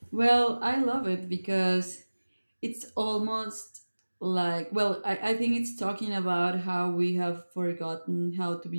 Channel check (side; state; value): both; inverted; correlation -1.00